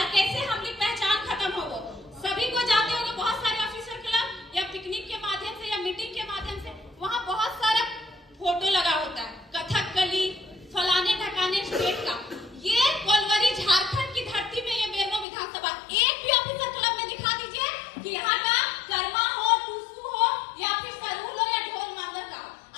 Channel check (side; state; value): right; drops out; at 15.2 s